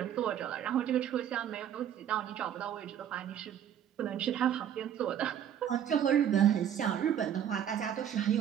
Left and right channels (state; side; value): quieter; left; 9.7 dB